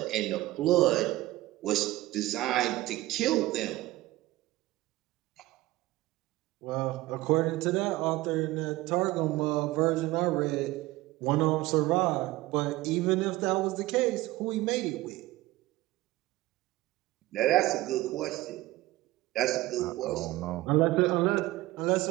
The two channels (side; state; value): left; quieter; 17.9 dB